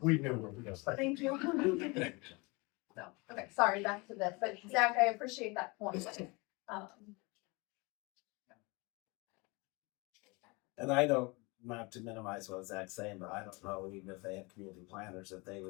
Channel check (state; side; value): quieter; right; 27.0 dB